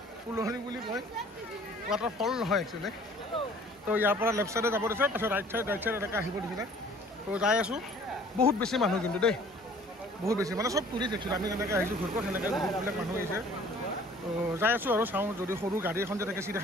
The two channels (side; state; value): both; normal; correlation 0.52